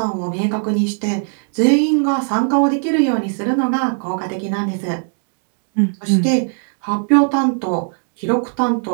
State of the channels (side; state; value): left; silent; 56 dB below the other